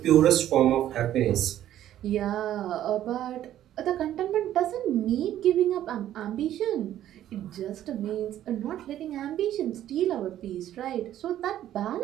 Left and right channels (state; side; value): quieter; left; 12.1 dB